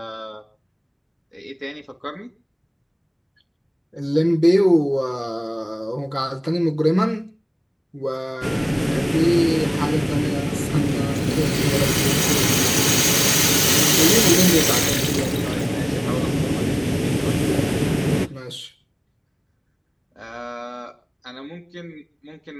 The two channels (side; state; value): both; identical; correlation 1.00